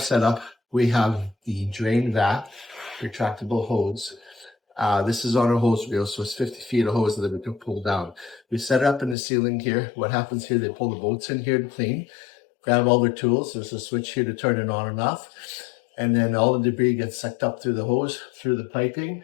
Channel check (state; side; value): drops out; right; at 9.2 s